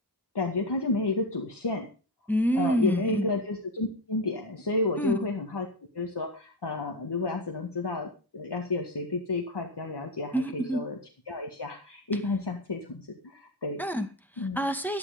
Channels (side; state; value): both; normal; correlation 0.16